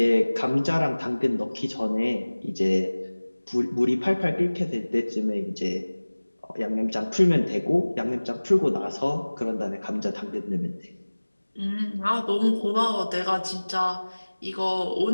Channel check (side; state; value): both; inverted; correlation -1.00